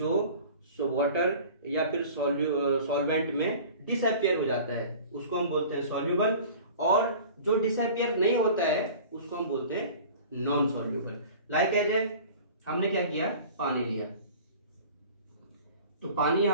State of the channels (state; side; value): inverted; both; correlation -0.42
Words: वाटर या फिर सॉल्वेंट में डिसअपियर हो जाता है उसको हम बोलते हैं सॉल्युबल, और जो डिसअपियर नहीं होता है उसको हम बोलते हैं नॉन सॉल्युबल। लाइक एज हमने क्या किया, पानी लिया, तो पानी